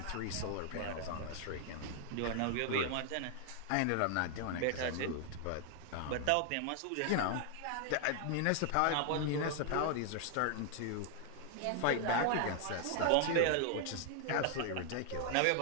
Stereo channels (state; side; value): different; both; correlation 0.00